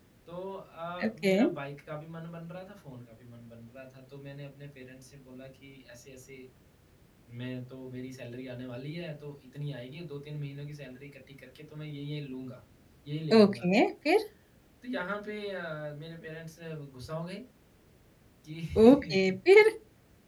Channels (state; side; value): identical; both; correlation 1.00